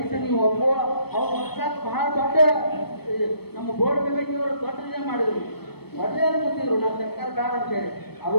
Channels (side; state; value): right; late; 0.97 ms